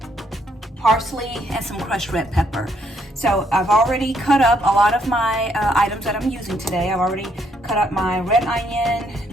parsley, and some crushed red pepper. So I've already cut up a lot of my items that I'm using today. I've already cut up my red onion,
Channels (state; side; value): normal; both; correlation 0.72